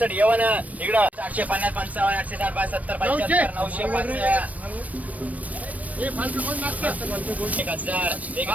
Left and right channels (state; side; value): late; left; 0.070 ms